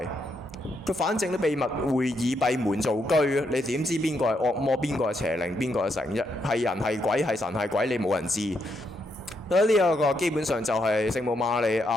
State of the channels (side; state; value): both; normal; correlation 0.79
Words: 佢反正啲秘密會議閉門造車，你點知邊個係惡魔，邊個係邪靈，邊個係神啫？係人係鬼，係神係鬼，你冇人知。呢一個基本上就係聖母瑪利